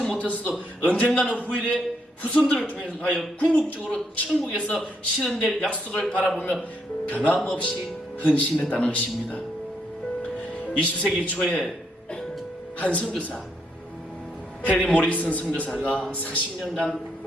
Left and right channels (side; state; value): both; normal; correlation 0.75